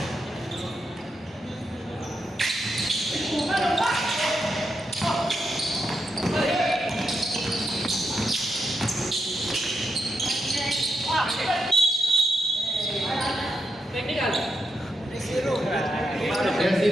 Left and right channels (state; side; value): normal; both; correlation 0.84